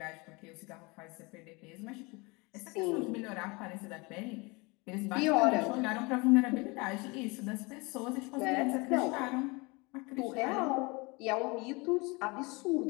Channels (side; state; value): right; quieter; 26.9 dB